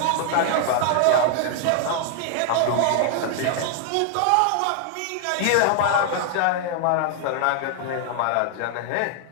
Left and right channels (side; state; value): both; different; correlation 0.00